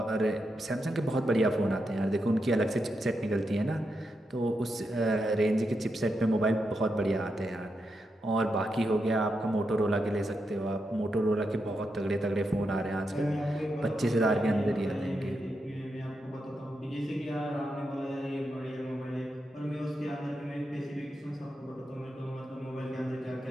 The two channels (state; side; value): normal; both; correlation 0.85